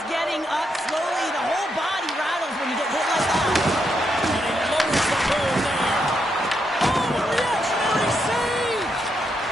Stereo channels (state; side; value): normal; both; correlation 0.80